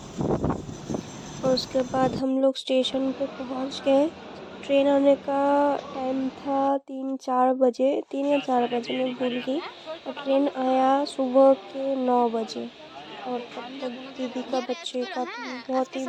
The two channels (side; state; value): both; identical; correlation 1.00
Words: और उसके बाद हम लोग स्टेशन पे पहुंच गए। ट्रेन आने का टाइम था 3-4 बजे, 3 या 4 बजे, मैं भूल गई। और ट्रेन आया सुबह के 9 बजे। और तब तक दीदी का बच्चे का तो बहुत ही